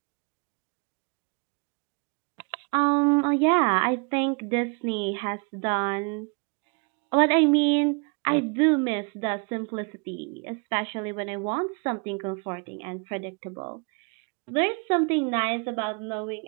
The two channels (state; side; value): quieter; left; 35.0 dB